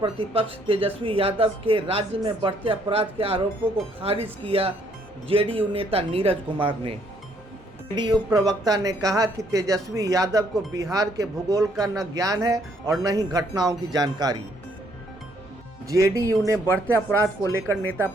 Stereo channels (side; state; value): both; normal; correlation 0.68